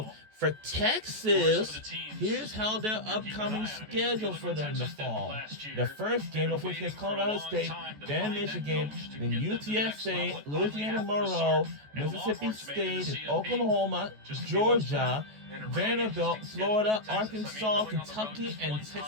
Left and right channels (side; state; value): left; late; 14 ms